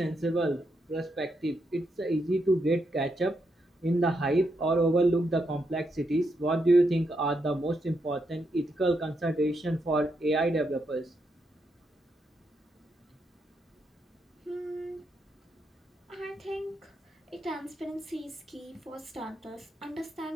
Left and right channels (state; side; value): normal; both; correlation 0.81